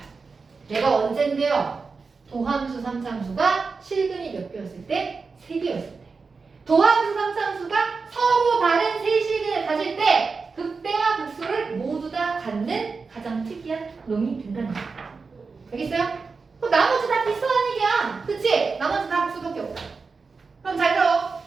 얘가 언젠데요? 도함수 3참수가 실근이 몇 개였을 때? 3개였을 때. 도함수 3참수가 서로 다른 세 실근을 가질 때 극대와 극소를 모두 다 갖는 가장 특이한 놈이 된다는 거예요. 알겠어요? 그럼 나머지 다 비슷한 얘기야. 그치? 나머지 다 극소밖에 없다. 그럼 잘 들어.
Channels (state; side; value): quieter; left; 4.6 dB